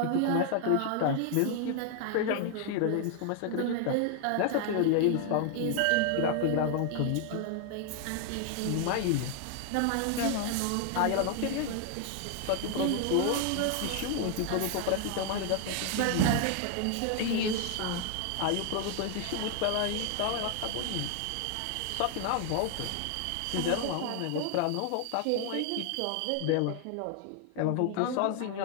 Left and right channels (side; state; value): both; different; correlation 0.00